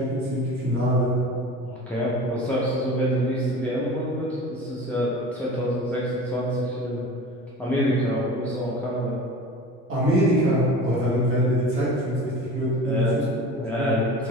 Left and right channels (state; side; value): normal; both; correlation 0.37